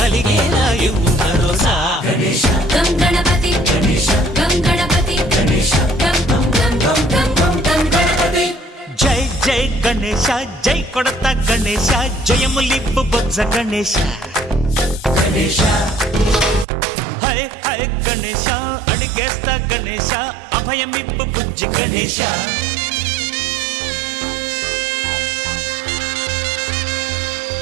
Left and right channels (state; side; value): drops out; left; at 16.7 s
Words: ఇవ్వు భరోసా గం గణపతి గం గణపతి గం గం గం గం గం గం గం గణపతి జై జై గణేశ జై కొడత గణేశ జయములివ్వు బొజ్జ గణేశ హై హై గణేశ అడిగేస్తా గణేశ అభయమివ్వు బుజ్జి గణేశ